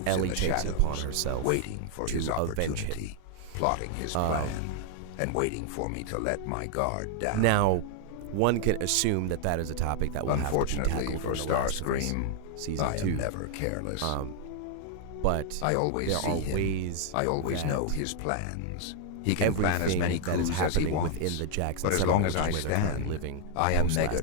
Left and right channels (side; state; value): both; different; correlation 0.00